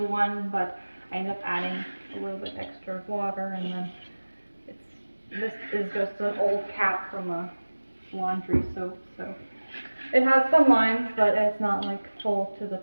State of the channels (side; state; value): both; inverted; correlation -1.00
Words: 1, but I ended up adding a little bit extra water, and then this is just an old cap from a laundry soap, so it has some lines, but it's not like full to the